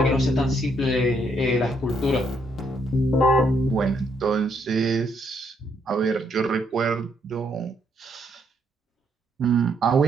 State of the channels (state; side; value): normal; both; correlation 0.73